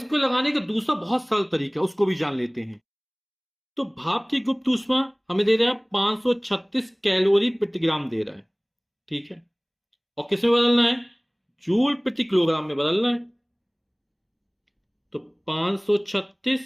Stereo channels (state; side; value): identical; both; correlation 1.00